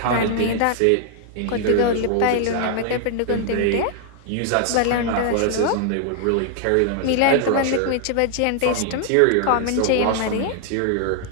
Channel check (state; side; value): different; both; correlation 0.00